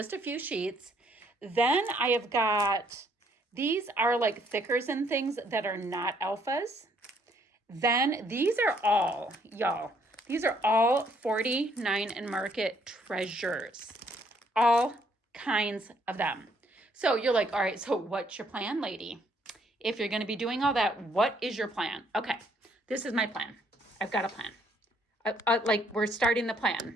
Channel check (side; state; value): both; normal; correlation 0.67